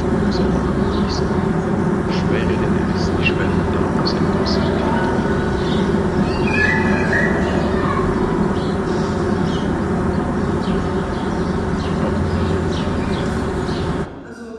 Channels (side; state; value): both; identical; correlation 1.00